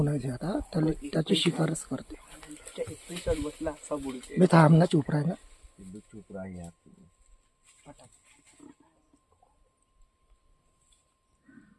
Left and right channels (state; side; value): identical; both; correlation 1.00